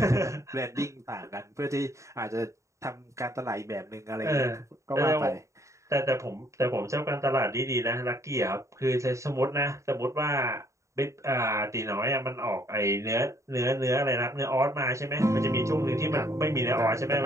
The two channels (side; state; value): left; late; 0.14 ms